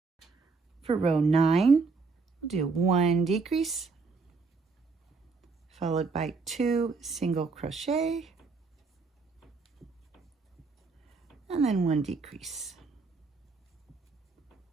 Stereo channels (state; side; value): quieter; left; 4.4 dB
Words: For row 9, we'll do 1 decrease, followed by 2 single crochet, and then 1 decrease.